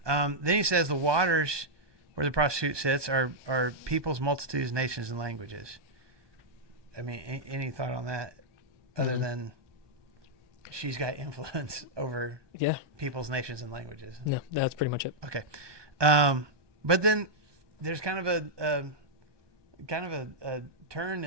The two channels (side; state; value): left; late; 1.2 ms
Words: Then he says the waters where the prostitute sits are peoples, multitudes, nations, and languages. I mean, any thought on that other than she's got influence over people's, nations, and languages? No, that's pretty much it. Okay. But then there's kind of a turn